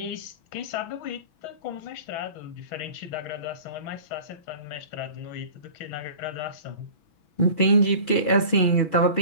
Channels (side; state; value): right; late; 6.1 ms